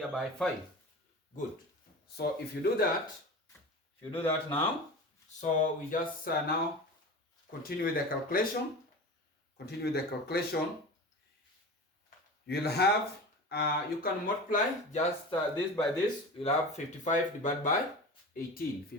by 5. Good. So if you do that now, so we just now continue with the calculation. Continue with the calculation. You'll have, you can multiply just this by this. You'll have 55 divided by 18.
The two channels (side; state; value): both; normal; correlation 0.31